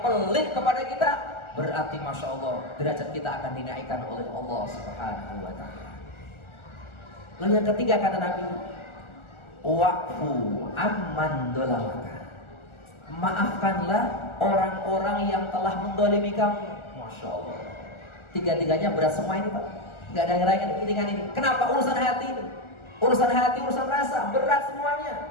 pelit kepada kita, berarti Masya Allah derajat kita akan dinaikkan oleh Allah Subhanahu wa taala. Lalu yang ketiga kata Nabi, wa'fu amman dolamaka. Maafkanlah orang-orang yang telah mendolimi kamu. Masya Allah. Tiga-tiganya berat semua ini Pak. Gak ada yang ringan ini. Kenapa? Urusan hati ini. Urusan hati, urusan rasa. Berat semuanya.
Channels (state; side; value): late; right; 1.4 ms